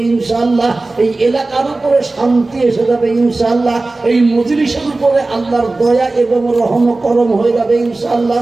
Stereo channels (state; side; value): quieter; left; 3.2 dB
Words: ইনশাআল্লাহ। এই এলাকার উপরে শান্তি এসে যাবে ইনশাআল্লাহ। এই মজলিসের উপরে আল্লাহর দয়া এবং রহম করম হয়ে যাবে ইনশাআল্লাহ।